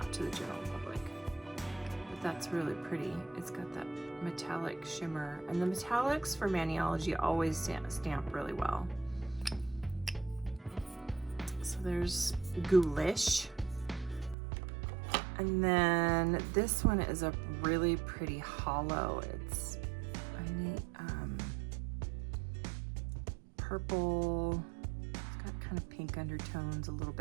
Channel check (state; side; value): drops out; left; at 14.4 s